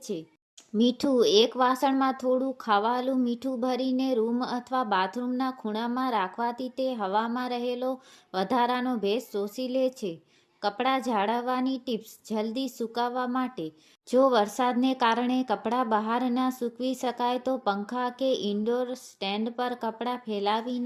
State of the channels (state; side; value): identical; both; correlation 1.00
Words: છે. મીઠું. એક વાસણમાં થોડું ખાવાલું મીઠું ભરીને રૂમ અથવા બાથરૂમના ખૂણામાં રાખવાથી તે હવામાં રહેલો વધારાનો ભેજ શોષી લે છે. કપડાં જાળવવાની ટિપ્સ. જલ્દી સુકાવવા માટે. જો વરસાદને કારણે કપડાં બહાર ના સૂકવી શકાય તો પંખા કે ઇન્ડોર સ્ટેન્ડ પર કપડાં